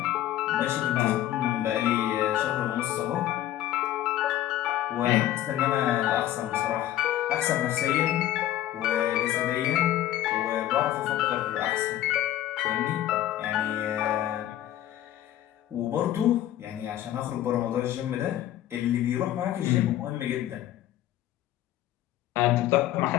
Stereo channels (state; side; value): quieter; right; 13.1 dB